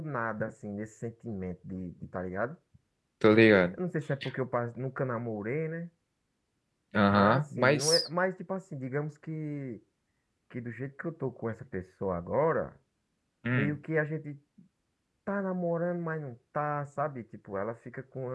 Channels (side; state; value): both; identical; correlation 1.00